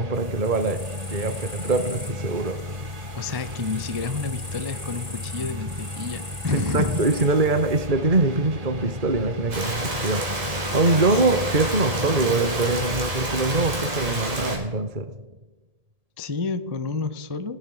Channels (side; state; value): left; late; 1.7 ms